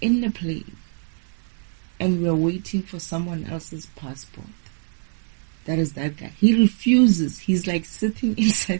in the plane, and we are waiting for someone else's passport. That is that guy. He refuses. He's like sitting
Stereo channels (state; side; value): silent; left; 55 dB below the other